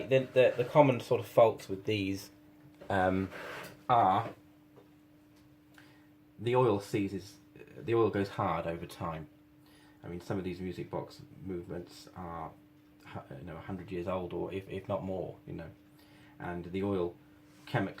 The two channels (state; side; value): identical; both; correlation 1.00